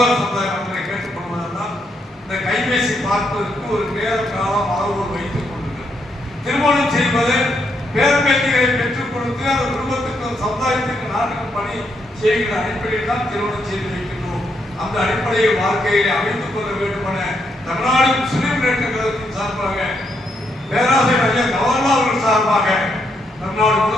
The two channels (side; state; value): both; normal; correlation 0.77